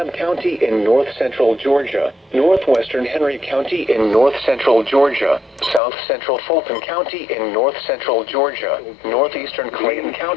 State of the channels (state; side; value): drops out; right; at 5.8 s